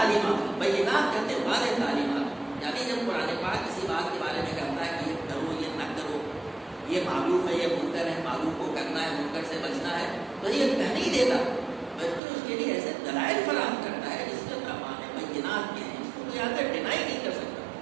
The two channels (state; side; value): drops out; left; at 12.2 s